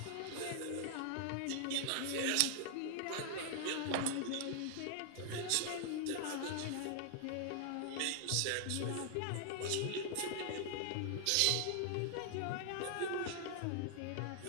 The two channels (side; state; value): both; different; correlation 0.00